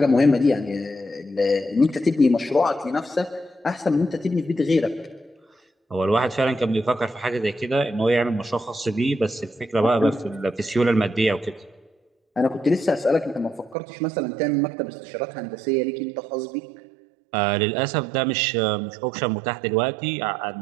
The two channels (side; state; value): left; drops out; at 13.8 s